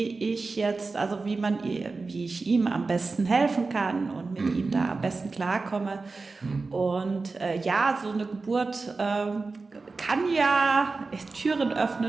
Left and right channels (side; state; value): left; quieter; 3.9 dB